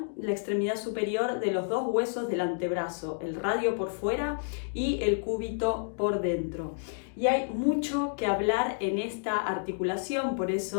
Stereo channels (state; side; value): silent; right; digital silence